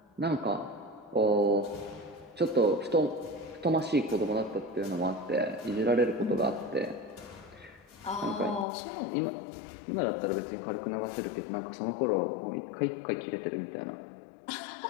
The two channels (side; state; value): right; drops out; at 8.7 s